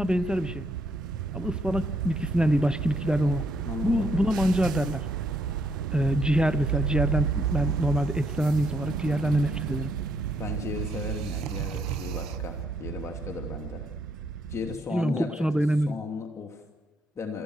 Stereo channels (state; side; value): normal; both; correlation 0.73